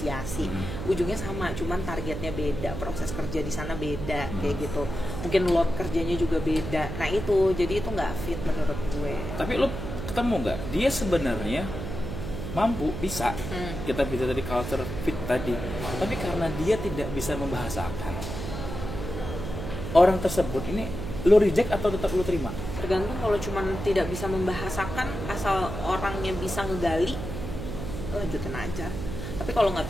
Ujungnya sama, cuman targetnya beda, proses kerja di sana beda kayak gitu. Mungkin load kerjanya juga beda. Nah itu, jadi itu nggak fit menurut gue. Tapi lu ketemu nggak? Dia sebenarnya mampu, bisa kita bisa tadi culture fit tadi, tapi karena dia tidak bisa membahasakan orang tersebut, ini lu reject atau tetap lu terima? Tergantung. Kalau cuman tidak bisa membahasakan, asal orangnya bisa ngegali, lanjutin aja. Tapi kalau nggak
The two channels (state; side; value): noise; right; hum, 6 dB below the sound